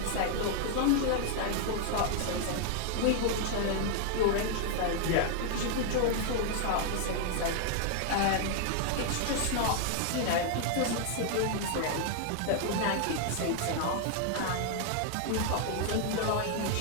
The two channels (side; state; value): both; different; correlation 0.00